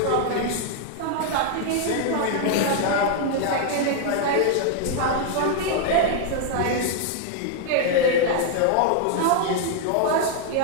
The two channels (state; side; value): different; both; correlation 0.00